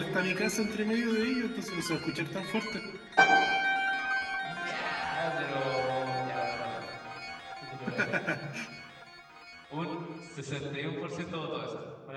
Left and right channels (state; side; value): identical; both; correlation 1.00